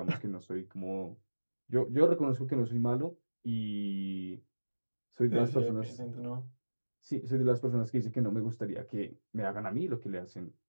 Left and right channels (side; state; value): both; inverted; correlation -1.00